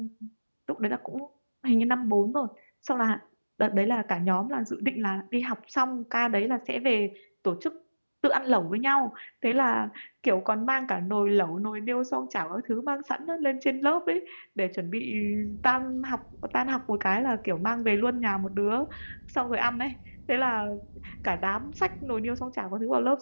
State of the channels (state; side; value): inverted; both; correlation -1.00